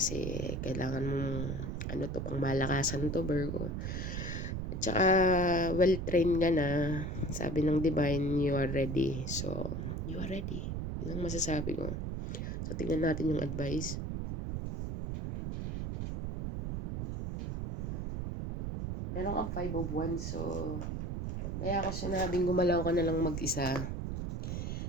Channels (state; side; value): noise; right; rumble, 3 dB below the sound